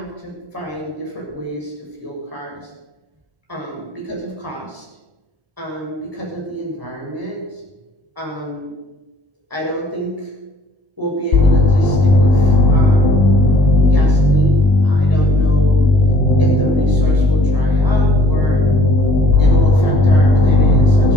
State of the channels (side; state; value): left; late; 1.0 ms